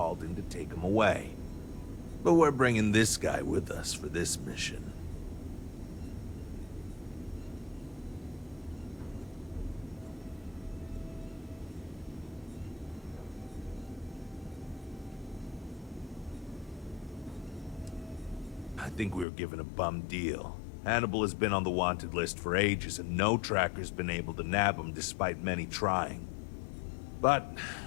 in to take him away. But we're bringing this guy with us for this mission. I think we were given a bum deal. Hannibal has been on the wanted list for ages, and no tracker's been able to nab him despite many trying. But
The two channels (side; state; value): right; drops out; at 19.2 s